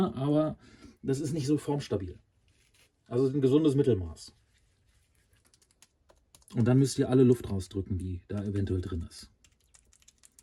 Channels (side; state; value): both; identical; correlation 1.00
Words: aber das ist nicht so formstabil. Also ein gesundes Mittelmaß. Und dann müsst ihr alle Luft rausdrücken, die da eventuell drin ist.